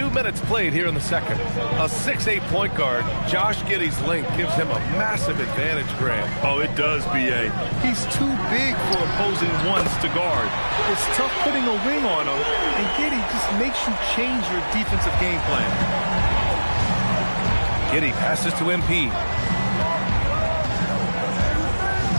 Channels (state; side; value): inverted; both; correlation -1.00